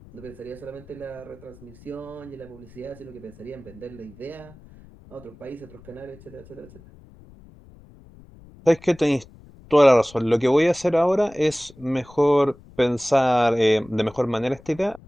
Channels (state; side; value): noise; left; rumble, 23 dB below the sound